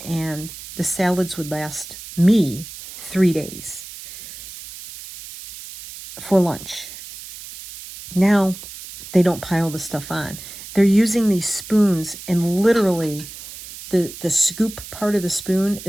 and the salads would last me 3 days for lunch. Now, they don't pile the stuff on. They're using these spoons, and literally the scoop part of the spoon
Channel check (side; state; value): right; noise; hiss, 14 dB below the sound